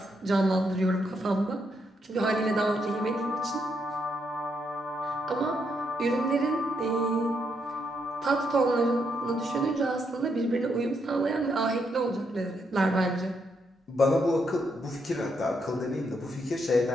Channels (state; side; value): normal; both; correlation 0.78